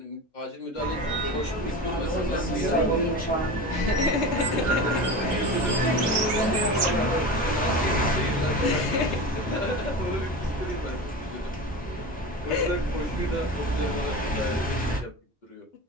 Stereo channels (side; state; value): both; normal; correlation 0.28